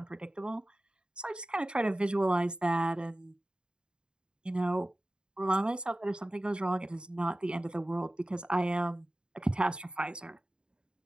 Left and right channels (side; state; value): left; late; 0.050 ms